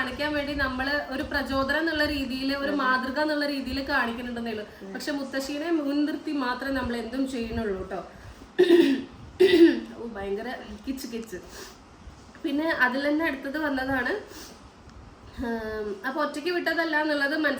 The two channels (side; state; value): both; identical; correlation 1.00